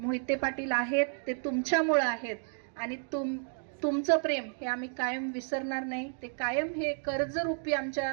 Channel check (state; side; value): silent; left; 57 dB below the other